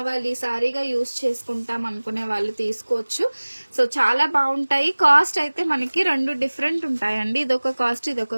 సారీగా యూజ్ చేసుకుంటాం అనుకునే వాళ్ళు తీసుకోవచ్చు. సో చాలా బాగుంటాయి. కాస్ట్ అయితే మనకి 2 డిఫరెంట్ ఉంటాయండి. ఇదొక కాస్ట్, ఇదొక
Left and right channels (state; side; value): inverted; both; correlation -1.00